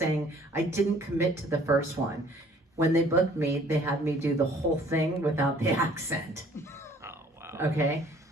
I didn't commit to the first one. When they booked me, they had me do the whole thing without the accent. Oh, wow. Okay.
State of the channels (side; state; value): both; normal; correlation 0.56